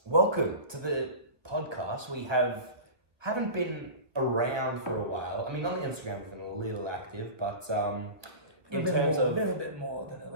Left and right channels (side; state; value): left; late; 1.4 ms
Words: welcome to the podcast. We haven't been around for a while. I mean, on the Instagram we've been a little active, but in terms of a little bit more than a